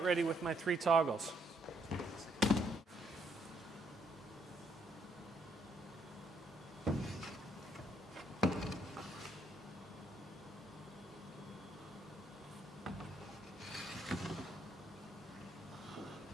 ready with my 3 toggles.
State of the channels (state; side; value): normal; both; correlation 0.70